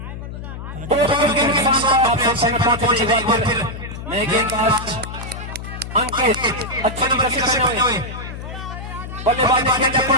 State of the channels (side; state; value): left; noise; hum, 9 dB below the sound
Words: 2 विकेट के नुकसान पर फिर नए गेंदबाज अंकित अच्छे नंबर से करने हुए बल्लेबाज